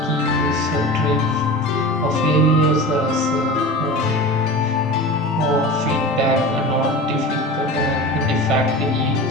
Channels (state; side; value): normal; both; correlation 0.32